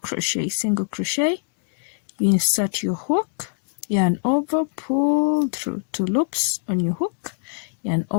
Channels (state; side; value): silent; right; digital silence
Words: You insert your hook, yarn over, pull through 2 loops on your hook, yarn